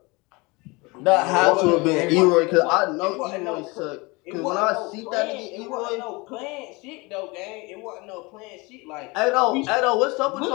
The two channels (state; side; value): quieter; right; 25.8 dB